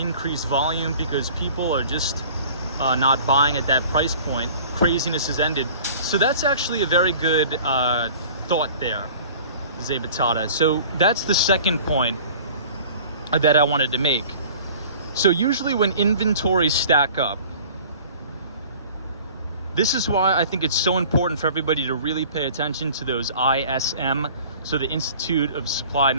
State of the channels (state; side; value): inverted; both; correlation -0.46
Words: volume because people are just not buying at that price point. Craziness has ended. So that's actually a very good thought there, Zabatata. So that's the second point that I wanted to make. So usually when inventories stack up, this is why I think it's so important for everybody to really pay attention to those ISM, so the Institute of Supply